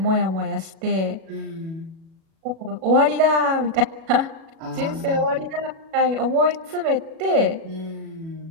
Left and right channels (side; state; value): left; late; 37 ms